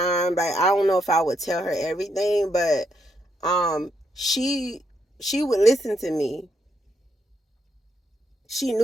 Like, I don't know if I would tell her everything, but she would listen to me. She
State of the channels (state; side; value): normal; both; correlation 0.78